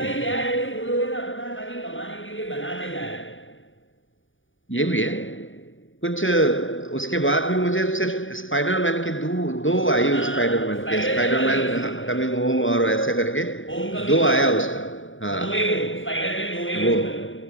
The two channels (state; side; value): late; right; 0.57 ms